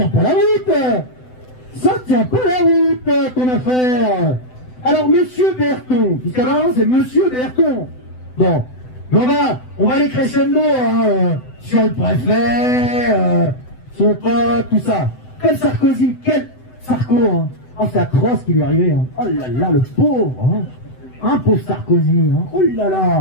pas la route. Ça tient pas la route, ton affaire. Alors monsieur Berton, puisqu'à maintenant c'est monsieur Berton. Bon, on va aller crescendo sur le préfet, son pote, tout ça. Quel Sarkozy, quel Sarko, hein. Oh c'est atroce ce qui lui est arrivé, hein. Oh là là, le pauvre, hein. Pauvre Sarkozy, hein. Oh là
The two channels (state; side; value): late; right; 7.9 ms